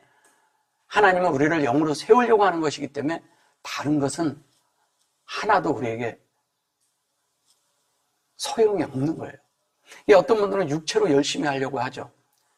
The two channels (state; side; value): identical; both; correlation 1.00